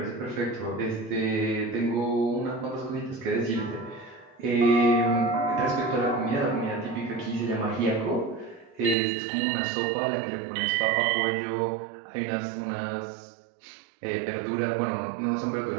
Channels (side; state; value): left; drops out; at 9.0 s